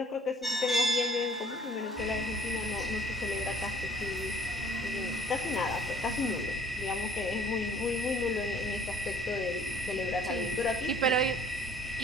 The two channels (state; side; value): normal; both; correlation 0.56